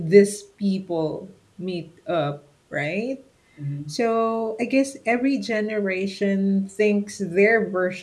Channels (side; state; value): both; identical; correlation 1.00